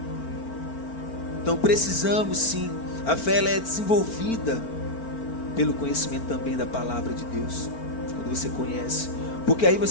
Então precisamos sim, a fé ela é desenvolvida pelo conhecimento também da palavra de Deus, quando você conhece, porque aí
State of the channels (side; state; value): right; late; 4.4 ms